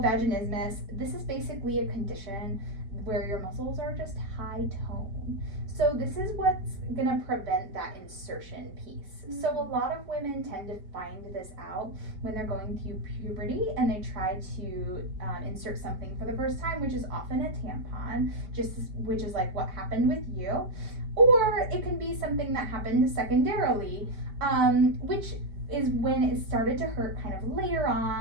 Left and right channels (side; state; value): left; late; 4.9 ms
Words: vaginismus, this is basically a condition where your muscles are just high tone. So this is what's gonna prevent that insertion piece. So a lot of women tend to find this out when they're going through puberty and they try to insert something for the first time, which is often a tampon, which is like what happened with you. Or it can be something that happened secondarily, which is when it started to hurt kind of later